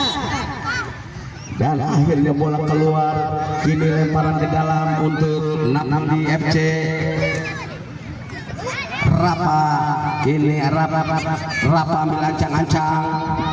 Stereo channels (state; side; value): identical; both; correlation 1.00